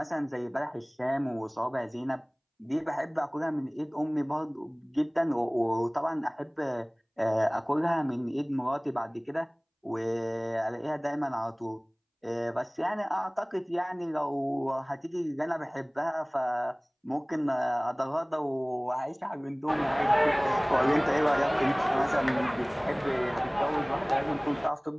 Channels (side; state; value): both; identical; correlation 1.00